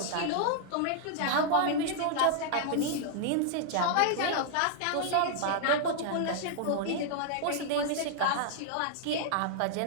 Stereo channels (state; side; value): different; both; correlation -0.01